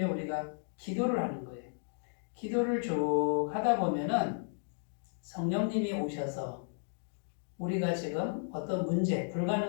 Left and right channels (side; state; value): right; silent; digital silence